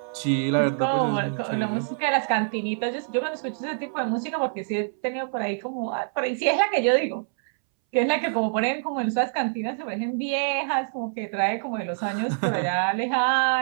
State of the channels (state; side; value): silent; left; 61 dB below the other